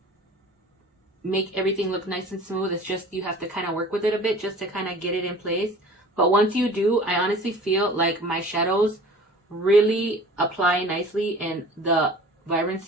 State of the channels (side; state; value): both; normal; correlation 0.44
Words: make everything look nice and smooth. It's just you have to kind of work with it a bit just to kind of get it in place. But once you do, I honestly feel like my shadows really apply nicely and the